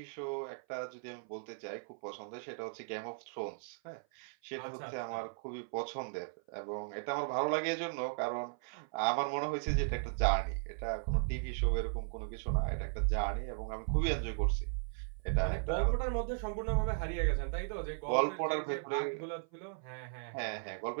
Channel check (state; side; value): silent; left; 53 dB below the other